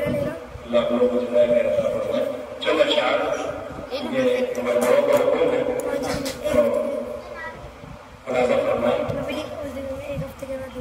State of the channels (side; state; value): both; identical; correlation 1.00